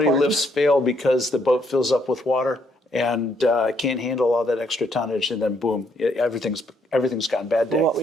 lifts fail because the boat fills up with water and can't handle all that extra tonnage, and then boom, everything's gone bad day. Well, what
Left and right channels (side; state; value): both; normal; correlation 0.71